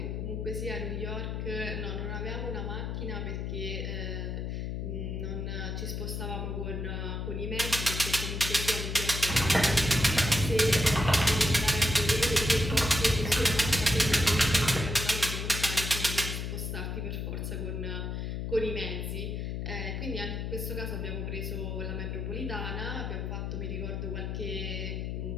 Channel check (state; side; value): noise; left; hum, 3 dB below the sound